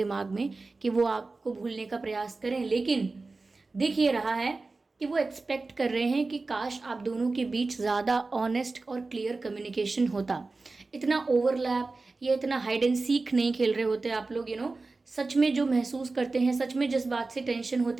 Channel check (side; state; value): left; quieter; 3.6 dB